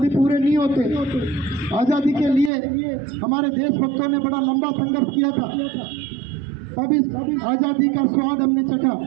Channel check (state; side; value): drops out; left; at 2.5 s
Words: पूरे नहीं होते। आज़ादी के लिए हमारे देशभक्तों ने बड़ा लंबा संघर्ष किया था, तब इस आज़ादी का स्वाद हमने चखा